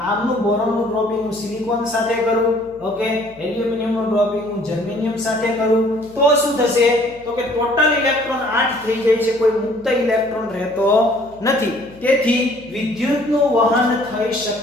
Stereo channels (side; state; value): left; noise; hum, 25 dB below the sound